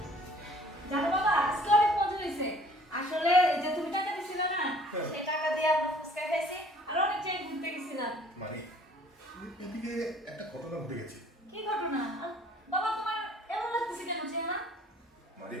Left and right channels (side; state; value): both; normal; correlation 0.55